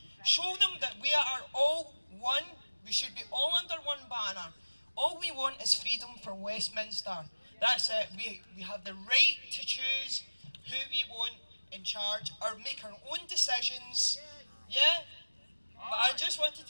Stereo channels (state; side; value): inverted; both; correlation -1.00